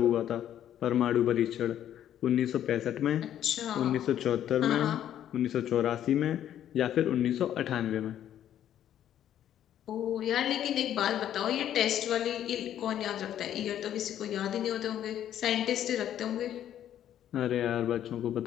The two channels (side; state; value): right; quieter; 10.9 dB